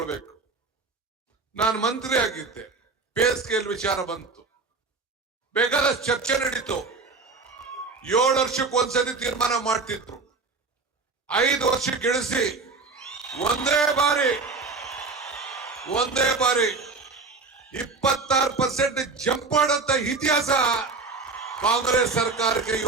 ನಾನು ಮಂತ್ರಿ ಆಗಿದ್ದೆ, ಪೇ ಸ್ಕೇಲ್ ವಿಚಾರ ಬಂತು, ಬೇಕಾದಷ್ಟು ಚರ್ಚೆ ನಡೀತು. 7 ವರ್ಷಕ್ಕೆ ಒಂದ್ಸತಿ ತೀರ್ಮಾನ ಮಾಡ್ತಿದ್ರು, 5 ವರ್ಷಕ್ಕೆ ಇಳಿಸಿ ಒಂದೇ ಬಾರಿ 26% ಜಂಪ್ ಮಾಡಂತ ಇತಿಹಾಸ ಕಾಂಗ್ರೆಸ್ ಸರ್ಕಾರಕ್ಕೆ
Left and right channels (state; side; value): quieter; left; 4.1 dB